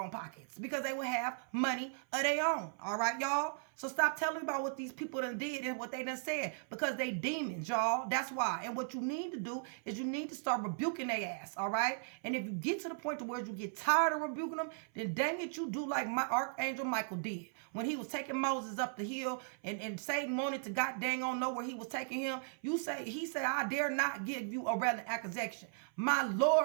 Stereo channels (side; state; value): left; silent; 53 dB below the other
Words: pockets because they would have money of their own, all right, y'all? So stop telling me about what these people done did and what they done said because they demons, y'all. That's why. And what you need to do is you need to start rebuking their ass, all right? And if you get to the point to where you get tired of rebuking them, then dang it, you do like my Archangel Michael did. When he was taking Moses up the hill and Satan wanted to god dang on know where he was taking him, he said, I dare not give you a relevant accusation. My